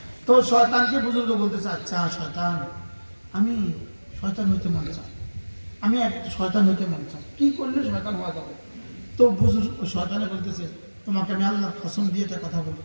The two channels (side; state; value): both; inverted; correlation -1.00